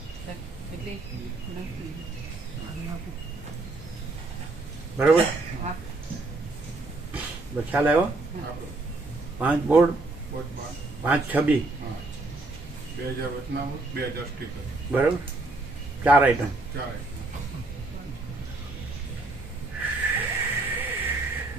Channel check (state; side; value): quieter; left; 3.1 dB